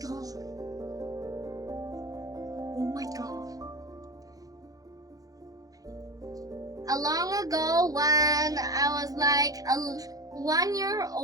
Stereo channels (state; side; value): late; left; 0.17 ms